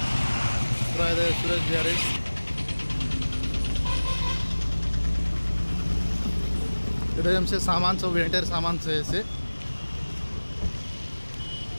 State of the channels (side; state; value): both; inverted; correlation -1.00